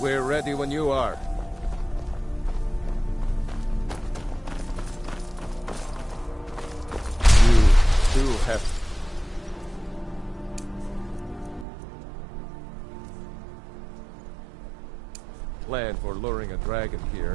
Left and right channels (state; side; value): drops out; left; at 11.7 s